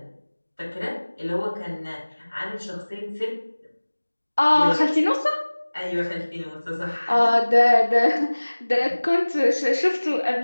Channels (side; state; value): both; inverted; correlation -1.00